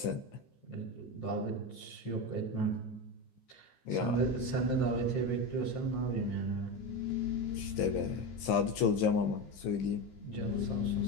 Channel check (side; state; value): right; late; 15 ms